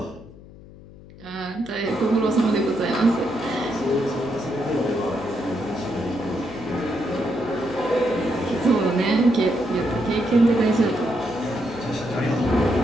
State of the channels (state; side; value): noise; left; hum, 20 dB below the sound